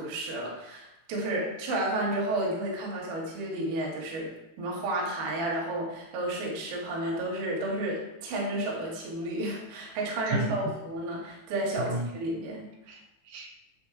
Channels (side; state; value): left; late; 18 ms